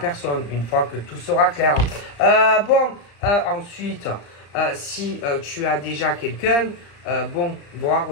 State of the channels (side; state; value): right; late; 34 ms